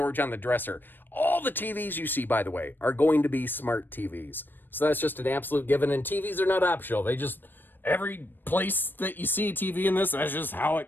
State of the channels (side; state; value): right; late; 0.094 ms